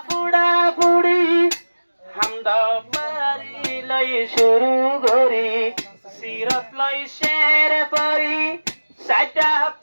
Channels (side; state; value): both; inverted; correlation -1.00